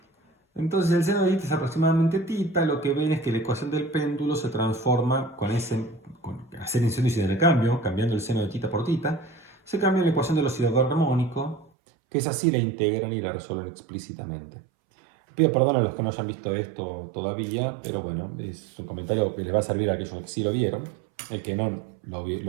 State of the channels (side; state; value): left; drops out; at 11.7 s